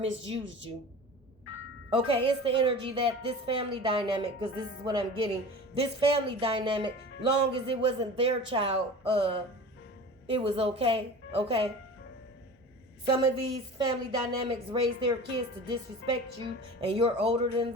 you. Okay, it's the energy that this family dynamic, because this is what I'm getting. This family dynamic, long as it wasn't their child, it was okay. Okay. Some of these family dynamics raise their kids to disrespect you, and you're older than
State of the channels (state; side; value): normal; both; correlation 0.36